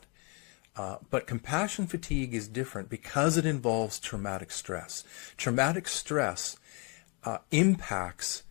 But compassion fatigue is different because it involves traumatic stress. Traumatic stress impacts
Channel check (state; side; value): quieter; right; 33.4 dB